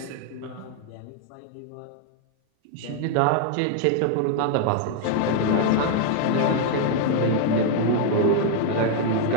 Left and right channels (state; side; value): different; both; correlation 0.00